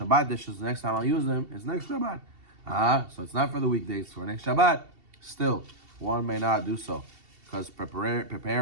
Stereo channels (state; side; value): late; left; 2.7 ms